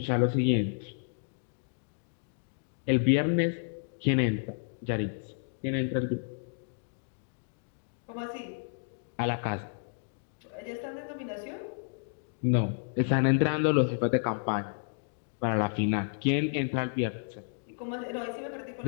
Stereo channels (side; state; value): right; silent; digital silence